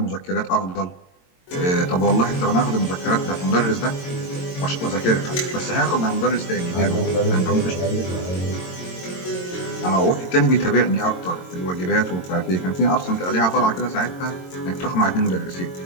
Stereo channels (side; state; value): right; late; 22 ms